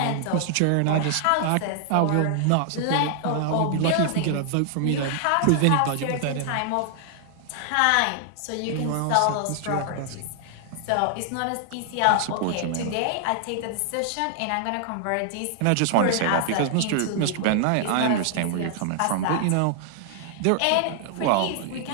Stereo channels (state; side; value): different; both; correlation 0.00